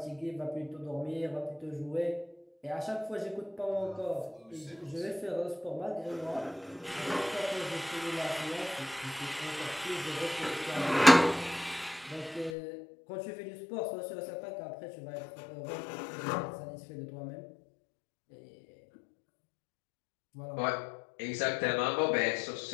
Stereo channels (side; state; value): right; drops out; at 12.6 s